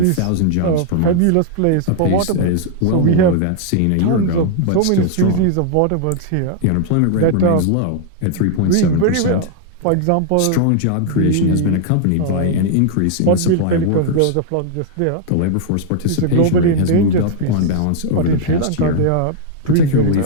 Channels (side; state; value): both; different; correlation 0.00